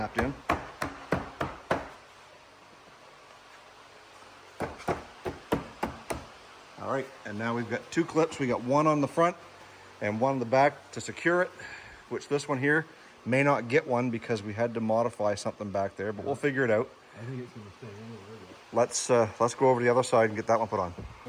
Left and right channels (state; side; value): identical; both; correlation 1.00